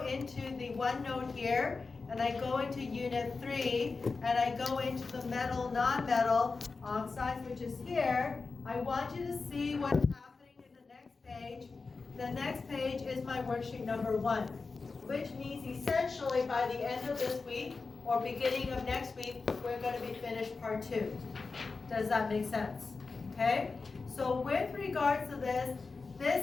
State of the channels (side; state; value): right; quieter; 4.2 dB